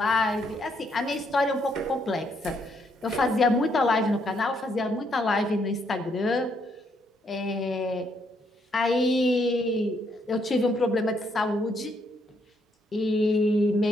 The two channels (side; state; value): both; normal; correlation 0.73